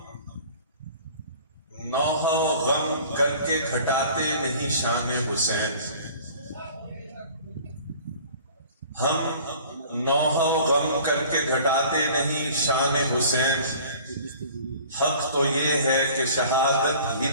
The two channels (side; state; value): both; inverted; correlation -0.47